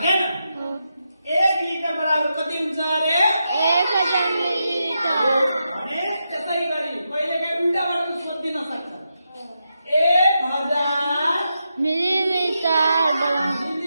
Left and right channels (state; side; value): inverted; both; correlation -0.86